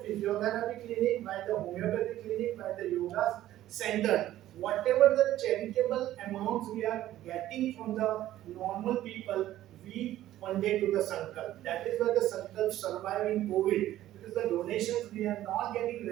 clinic, by the homeopathy clinic, by the yoga center. Whatever the charitable amounts we are getting from the normal people, we funded to the Sankalp. That is why the Sankalp survive in COVID. Because the donations we are not getting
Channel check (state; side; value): quieter; left; 13.7 dB